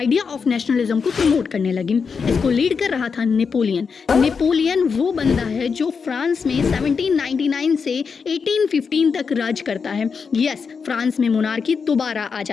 ऑफ नेशनलिज्म को प्रमोट करने लगी। इसको लीड कर रहा था नेपोलियन। नेपोलियन वो बंदा है जो फ्रांस में 1799 से 1815 तक राज करता है। यस, फ्रांस में मोनार्की दोबारा आ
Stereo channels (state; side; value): quieter; right; 5.6 dB